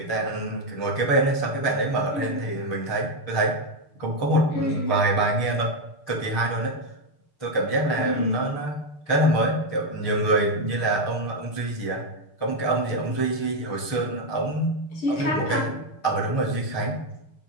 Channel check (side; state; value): right; late; 6.7 ms